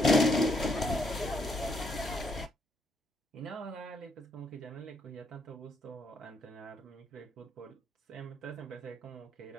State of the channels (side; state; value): both; normal; correlation 0.73